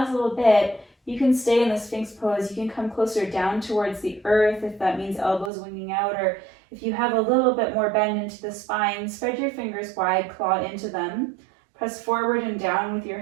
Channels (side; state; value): left; drops out; at 5.5 s